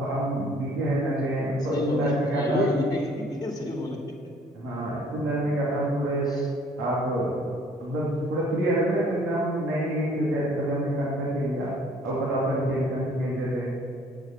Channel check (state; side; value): normal; both; correlation 0.57